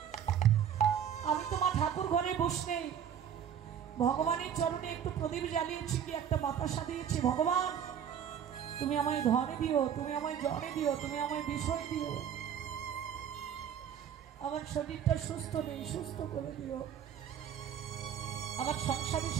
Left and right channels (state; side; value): quieter; left; 8.8 dB